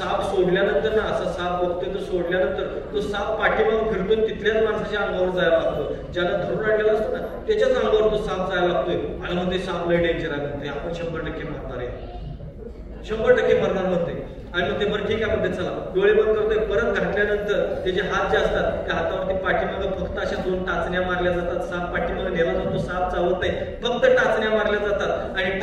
सोडल्यानंतर ना, असा साप बघतोय तो सोडल्यानंतर तो साप पाठीमागून फिरतो, तिथल्याच माणसाच्या अंगावर जायला लागतो. ज्याला धरून आणलेला असतो ना त्याच्याच अंगावर तो साप जायला लागतोय आणि मग ते साप लय डेंजर आहे, आपण 100% मरणार आहे, 100% मरणार म्हणते. आणि मग ते बरं ठीक आहे म्हणते, चला डोळे बंद करतोय. परत घातल्यानंतर त्याचे हात जे असतात त्या हातावरती पाठीमागं फक्त अशा 2 टाचण्या मारल्या जातात. साप पाठीमागं नेला जातो, साप चावत नाही, फक्त टाचण्या मारल्या जातात आणि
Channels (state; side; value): identical; both; correlation 1.00